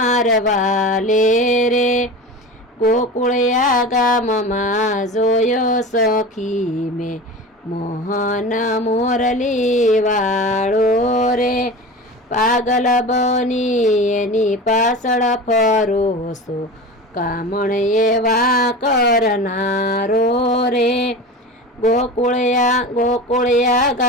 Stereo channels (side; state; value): both; normal; correlation 0.31